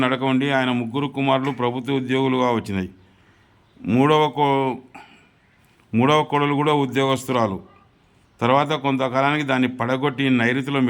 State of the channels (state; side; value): identical; both; correlation 1.00